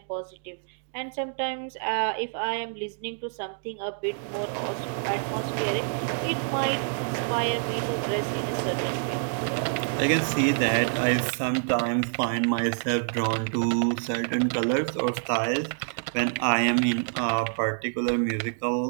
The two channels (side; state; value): left; silent; digital silence